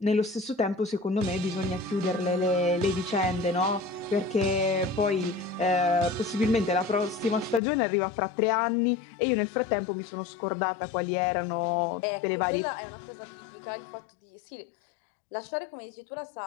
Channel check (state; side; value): drops out; right; at 7.6 s